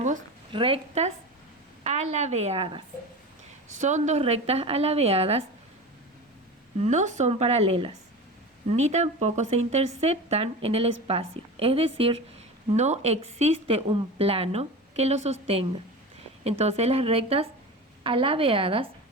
rectas alabeadas. Son dos rectas alabeadas, no son paralelas, ni tampoco se interceptan en el espacio. Es decir, no existe un plano que lo sostenga. Entonces las rectas alabeadas,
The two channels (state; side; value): normal; both; correlation 0.29